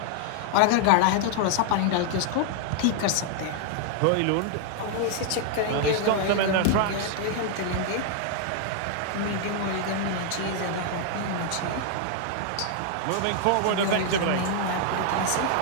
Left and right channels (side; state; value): both; different; correlation 0.00